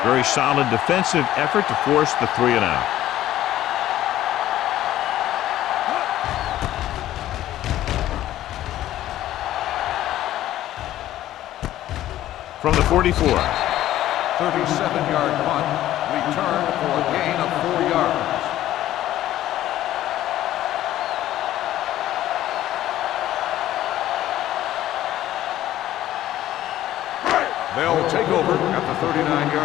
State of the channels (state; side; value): quieter; right; 13.6 dB